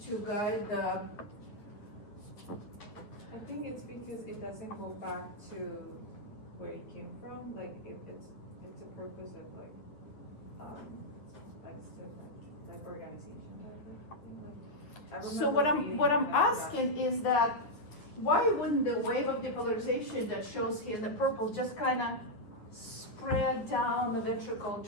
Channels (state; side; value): late; right; 9.4 ms